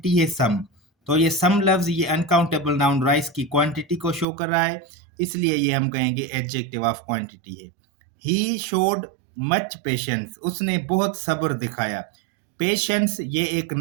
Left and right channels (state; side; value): drops out; left; at 4.2 s